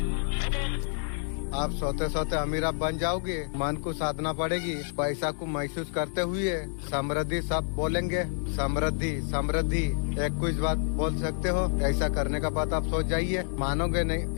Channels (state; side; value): silent; right; 59 dB below the other